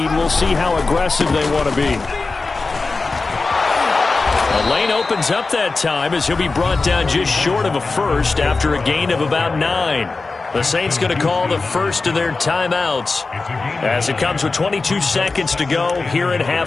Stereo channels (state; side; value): quieter; right; 3.8 dB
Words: we'll see how aggressive they want to be. The lane opens up that time as he'll be brought down just short of a first after a gain of about 9. The Saints going to call the first of their timeouts as it comes with 22 seconds to go here in